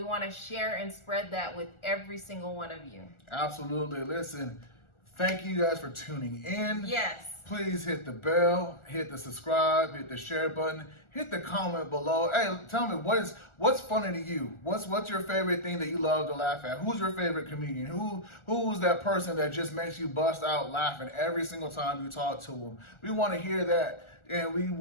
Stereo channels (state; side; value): late; right; 1.4 ms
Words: want to share and spread that with every single one of you. Absolutely. Listen, thank you guys for tuning in. Yes. Please hit the bell, hit the subscribe, hit the share button, hit the comment below. Hey, tell me what's funny to you? What's your favorite thing that you love to laugh at? Who's your favorite comedian? Who's that person that just makes you bust out laughing every single time you talk to them? We want to hear that, and we